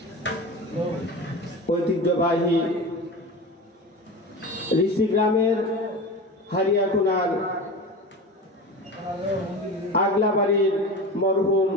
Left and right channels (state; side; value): normal; both; correlation 0.29